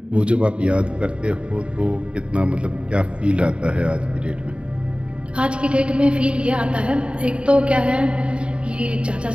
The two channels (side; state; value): left; late; 0.056 ms